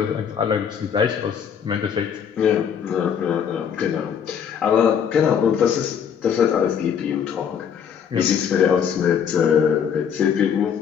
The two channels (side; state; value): right; quieter; 7.8 dB